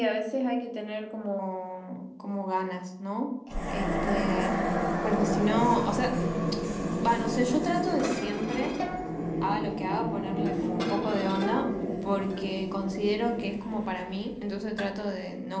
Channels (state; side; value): identical; both; correlation 1.00